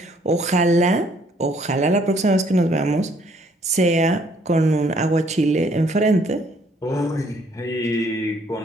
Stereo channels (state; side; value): normal; both; correlation 0.64